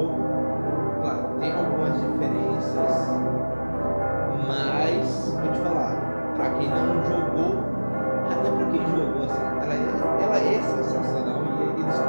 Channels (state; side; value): inverted; both; correlation -1.00